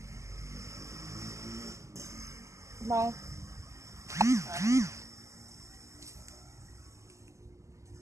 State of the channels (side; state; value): left; late; 0.15 ms